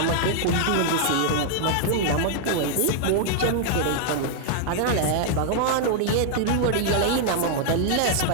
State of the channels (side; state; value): both; different; correlation 0.00